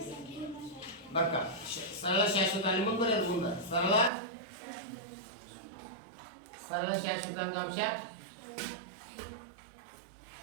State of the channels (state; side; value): drops out; left; at 4.1 s